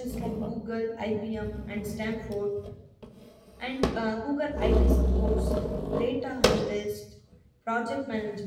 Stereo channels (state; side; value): identical; both; correlation 1.00